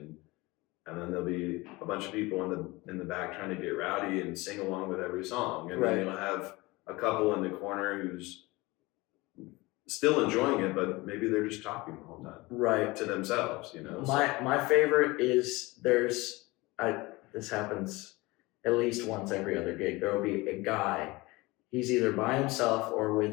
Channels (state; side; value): quieter; right; 22.3 dB